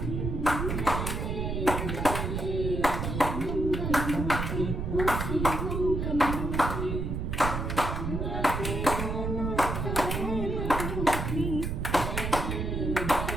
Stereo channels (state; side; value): noise; right; rumble, 2 dB below the sound